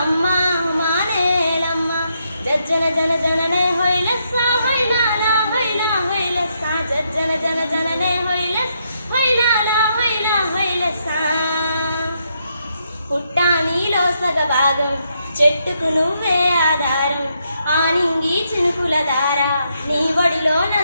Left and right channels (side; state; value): both; inverted; correlation -0.78